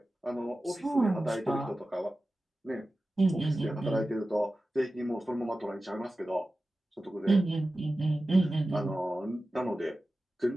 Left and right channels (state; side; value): normal; both; correlation 0.95